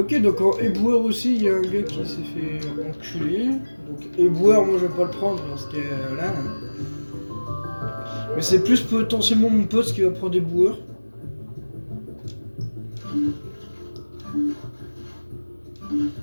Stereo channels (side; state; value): both; inverted; correlation -1.00